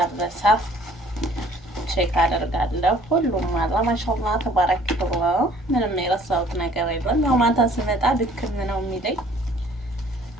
ቼክ አደርጋለሁ። ሁሉም አላ ማሻአላህ ተባረከላህ። ምንም የረሳሁት ነገር የለም። ያው ማታ ስመጣ ድክም ነው የሚለኝ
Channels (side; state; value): both; normal; correlation 0.56